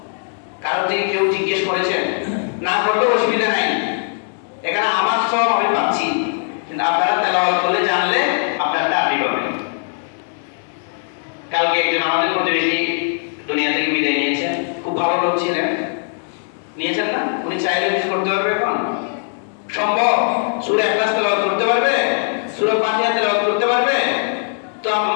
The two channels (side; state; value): right; silent; digital silence